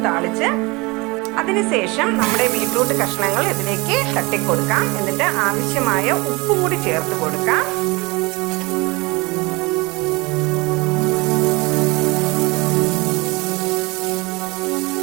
താളിച്ച് അതിനുശേഷം നമ്മുടെ ബീറ്റ്റൂട്ട് കഷ്ണങ്ങൾ ഇതിലേക്ക് തട്ടിക്കൊടുക്കാം. എന്നിട്ട് ആവശ്യമായ ഉപ്പും കൂടി ചേർത്ത് കൊടുക്കാം.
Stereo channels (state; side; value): quieter; left; 25.0 dB